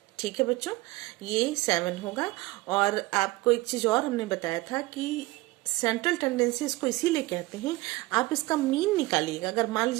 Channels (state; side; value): quieter; left; 20.5 dB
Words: ठीक है बच्चों, ये 7 होगा। और आपको एक चीज और हमने बताया था कि सेंट्रल टेंडेंसी इसको इसीलिए कहते हैं, आप इसका मीन निकालिएगा। अगर मान